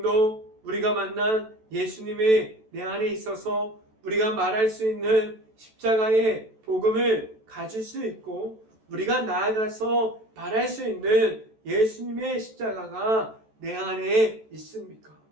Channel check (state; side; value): late; left; 14 ms